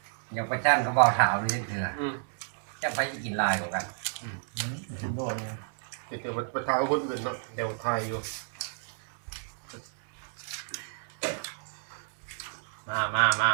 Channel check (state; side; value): silent; left; digital silence